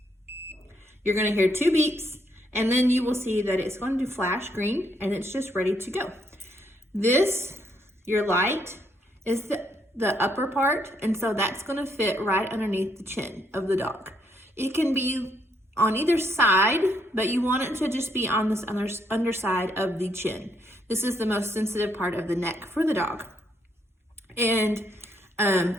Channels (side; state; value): both; normal; correlation 0.73